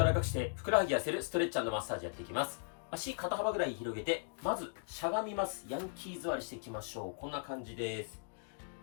らかくしてふくらはぎ痩せるストレッチ&マッサージやっていきます。足肩幅ぐらい広げて、まずしゃがみます。ヤンキー座りしていきましょう。こんな感じです。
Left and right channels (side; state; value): right; silent; digital silence